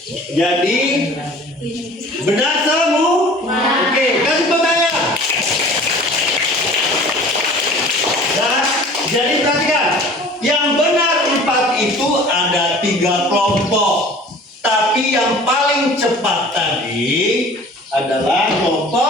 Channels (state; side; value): normal; both; correlation 0.46